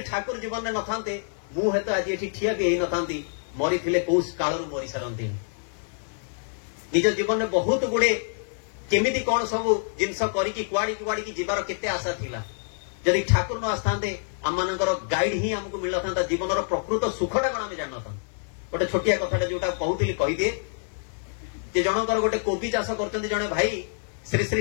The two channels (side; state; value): right; silent; digital silence